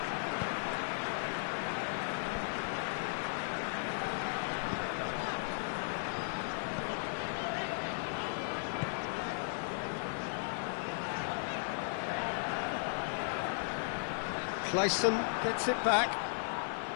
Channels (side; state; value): right; silent; digital silence